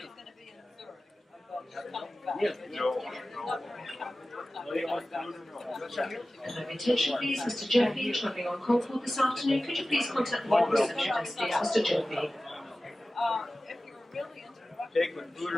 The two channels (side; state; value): both; normal; correlation 0.96